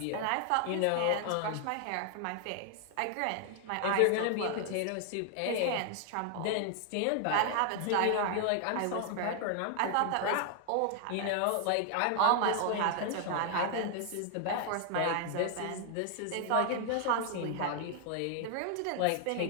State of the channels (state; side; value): different; both; correlation 0.00